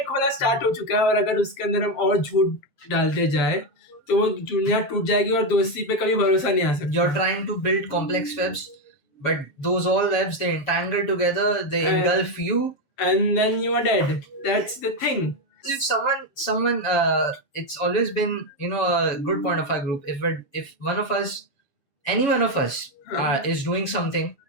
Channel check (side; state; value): right; late; 7.2 ms